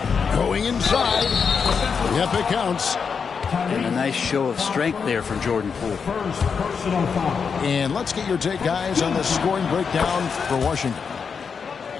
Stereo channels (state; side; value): quieter; right; 6.0 dB